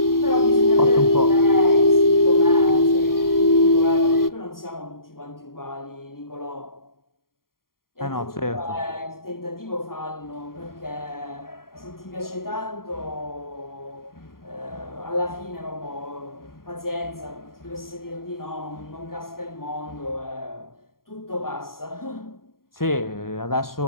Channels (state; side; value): late; right; 0.92 ms